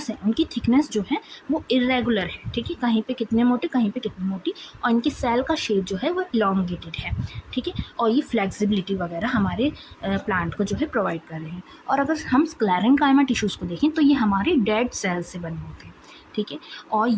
हैं उनकी थिकनेस जो है वो इरेगुलर है, ठीक है, कहीं पे कितने मोटे कहीं पे कितनी मोटी, और इनकी सेल का शेप जो है वो इलोंगेटेड है, ठीक है, और ये फ्लेक्सिबिलिटी वगैरह हमारे प्लांट को जो है प्रोवाइड कर रहे हैं। और अगर हम स्क्लेरेंकाइमा टिश्यूज़ को देखें तो ये हमारे डेड सेल्स से बने होते हैं, ठीक है, और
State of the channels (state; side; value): identical; both; correlation 1.00